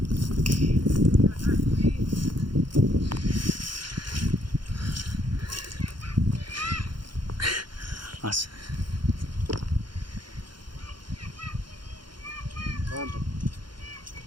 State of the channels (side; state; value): left; late; 0.72 ms